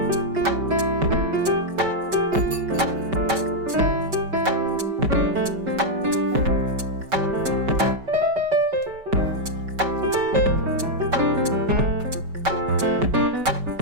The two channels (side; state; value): left; late; 5.2 ms